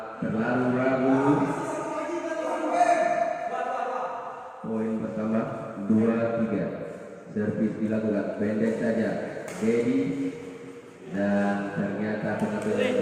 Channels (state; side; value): identical; both; correlation 1.00